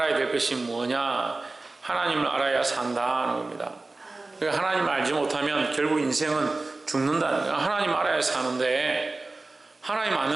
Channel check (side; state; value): left; quieter; 3.3 dB